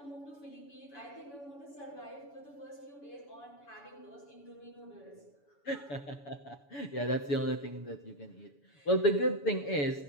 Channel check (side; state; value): right; late; 7.0 ms